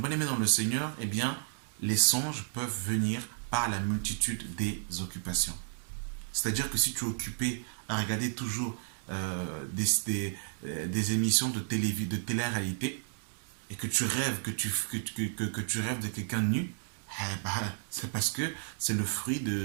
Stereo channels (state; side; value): silent; left; digital silence